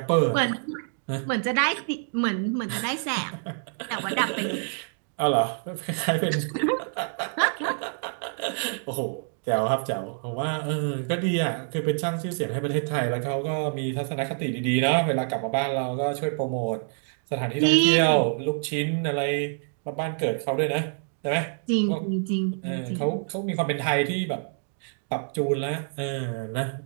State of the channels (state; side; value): silent; left; 60 dB below the other